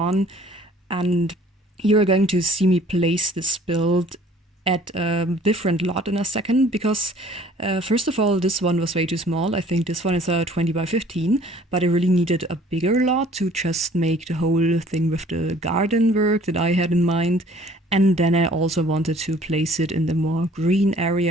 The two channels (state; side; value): normal; both; correlation 0.54